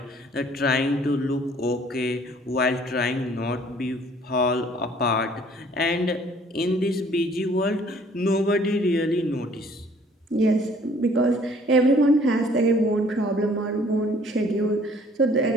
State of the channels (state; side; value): normal; both; correlation 0.57